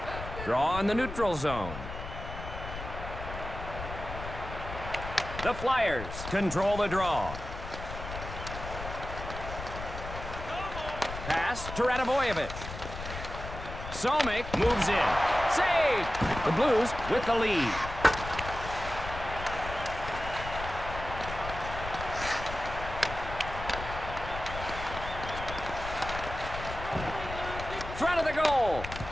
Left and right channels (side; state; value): left; noise; rumble, 9 dB below the sound